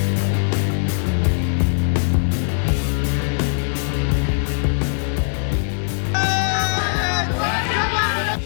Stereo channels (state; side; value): silent; right; digital silence